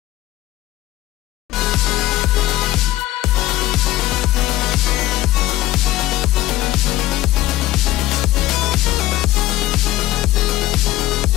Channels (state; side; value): quieter; right; 15.7 dB